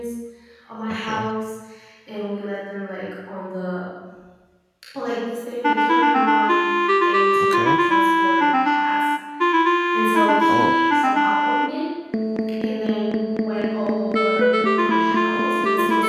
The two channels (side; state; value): both; identical; correlation 1.00